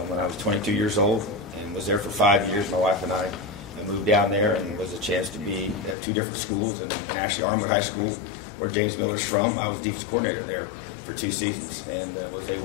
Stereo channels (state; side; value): drops out; right; at 6.0 s